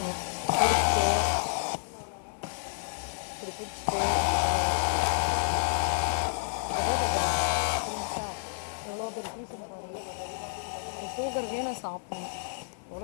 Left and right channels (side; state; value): right; silent; digital silence